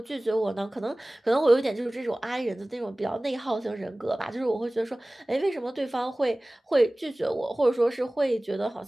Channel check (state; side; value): normal; both; correlation 0.98